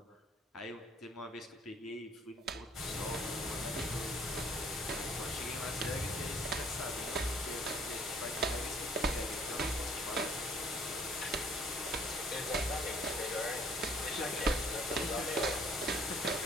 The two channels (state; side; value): normal; both; correlation 0.59